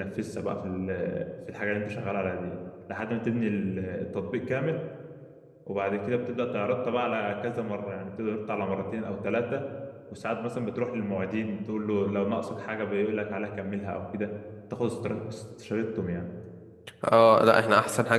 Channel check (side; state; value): both; identical; correlation 1.00